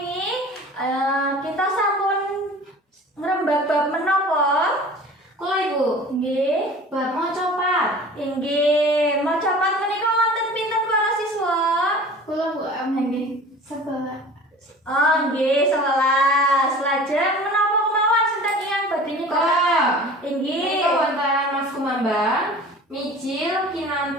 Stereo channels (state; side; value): normal; both; correlation 0.42